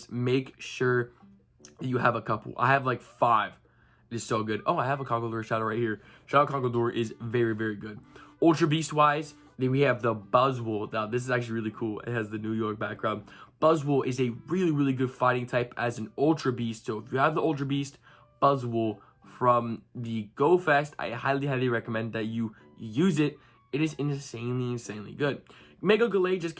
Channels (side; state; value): both; identical; correlation 1.00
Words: make sure that you have a couple. I have like 5. It is so good. Oh, I have a Conkeldurr Shadow right here. Shadow Conkeldurr is very good. Ultra Beast wise, then we have the Buzzwole. Now, this is actually really cool. It has the New York background. Buzzwole is a really good fighting type as an Ultra Beast. So if you have the Ultra Beast, Buzzwole from the Go Fest, I highly recommend that you use it. It is insanely good. Mega Galay just